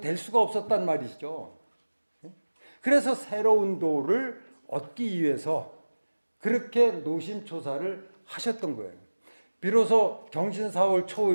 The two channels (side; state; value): both; inverted; correlation -1.00